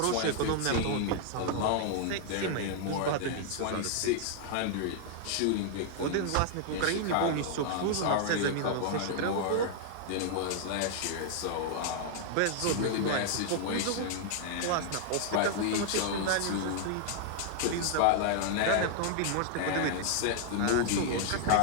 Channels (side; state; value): both; different; correlation -0.01